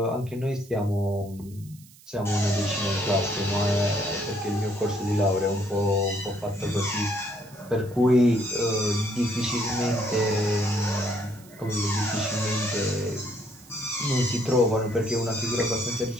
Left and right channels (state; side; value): noise; right; hiss, 24 dB below the sound